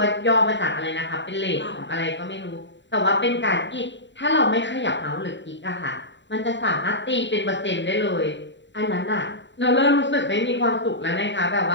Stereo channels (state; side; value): late; right; 0.53 ms